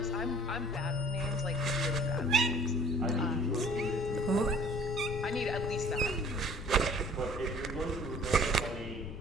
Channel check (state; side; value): noise; left; rumble, 13 dB below the sound